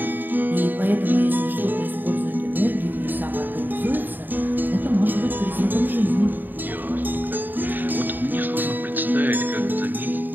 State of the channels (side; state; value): left; late; 0.090 ms